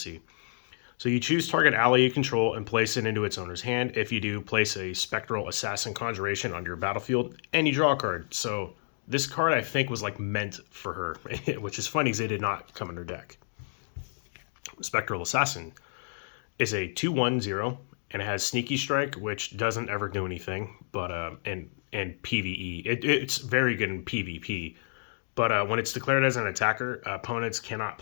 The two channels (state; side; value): silent; right; digital silence